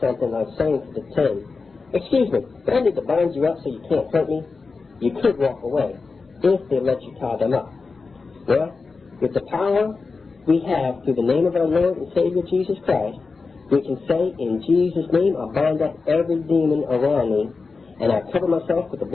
like saying to the thug, excuse me, do I need to bind you up so you can't hurt me? You could walk away, if they let you tie them up. Well, with the power we have through the name of our Lord and Savior Jesus Christ, we can say, in Jesus' name, I bind up every demon around me, and I cover myself with the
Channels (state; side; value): quieter; right; 4.3 dB